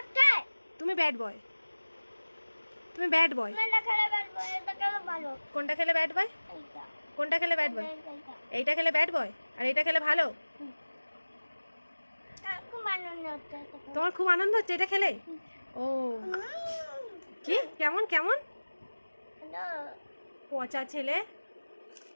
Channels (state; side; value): inverted; both; correlation -1.00